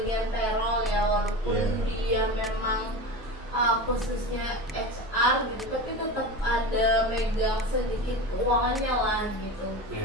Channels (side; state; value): both; normal; correlation 0.28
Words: payroll ya, walaupun dia memang khususnya HR gitu, tapi tetap ada megang sedikit keuangannya lah gitu.